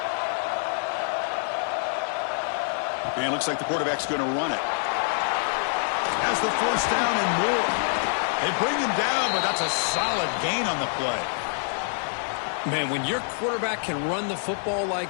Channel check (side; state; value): right; silent; 61 dB below the other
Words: And it looks like the quarterback's going to run it. Has the first down and more. They bring him down, but that's a solid gain on the play. Man, when your quarterback can run the football